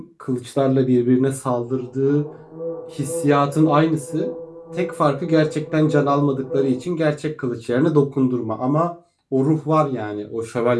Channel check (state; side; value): identical; both; correlation 1.00